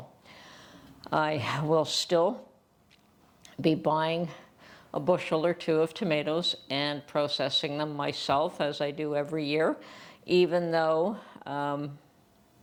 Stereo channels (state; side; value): identical; both; correlation 1.00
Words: I will still be buying a bushel or two of tomatoes and processing them myself as I do every year, even though